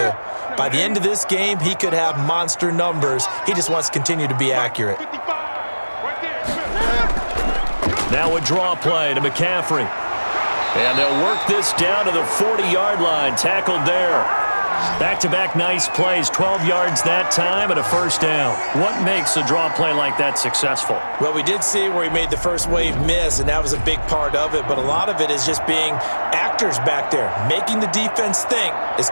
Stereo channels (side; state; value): both; inverted; correlation -1.00